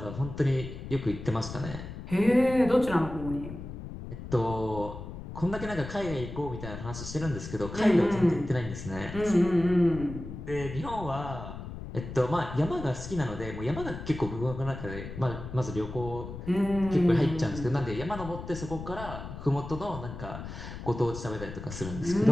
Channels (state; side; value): noise; left; rumble, 10 dB below the sound